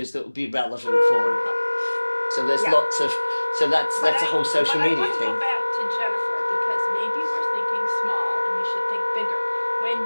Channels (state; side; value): inverted; both; correlation -1.00